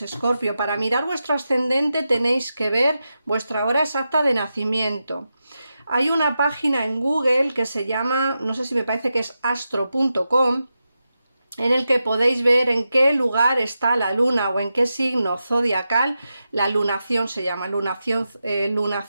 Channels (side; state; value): both; inverted; correlation -0.90